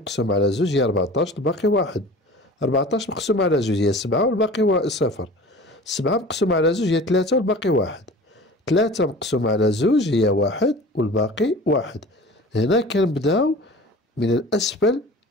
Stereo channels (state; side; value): normal; both; correlation 0.41